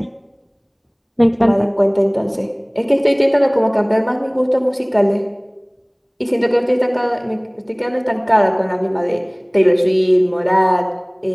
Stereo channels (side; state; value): both; identical; correlation 1.00